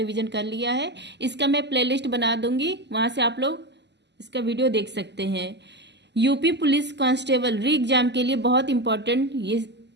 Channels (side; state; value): left; late; 0.50 ms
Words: कर लिया है। इसका मैं प्लेलिस्ट बना दूंगी, वहां से आप लोग इसका वीडियो देख सकते हैं। यूपी पुलिस कांस्टेबल री एग्जाम के लिए बहुत इंपॉर्टेंट ये